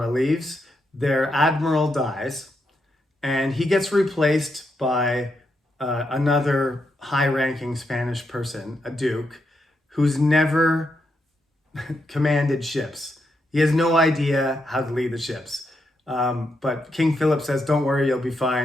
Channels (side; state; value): both; normal; correlation 0.82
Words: leaves, their admiral dies, and he gets replaced by another high-ranking Spanish person, a duke, who's never commanded ships. He has no idea how to lead the ships. But King Philip says, "Don't worry, you'll be